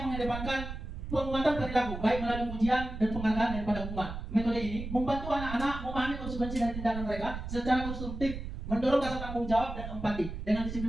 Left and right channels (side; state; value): right; noise; rumble, 7 dB below the sound